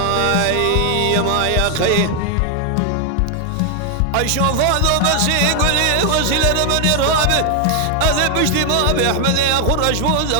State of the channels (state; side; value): different; both; correlation 0.00